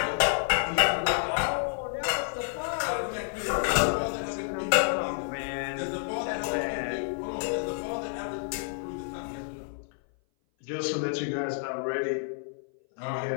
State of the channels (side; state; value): right; silent; 57 dB below the other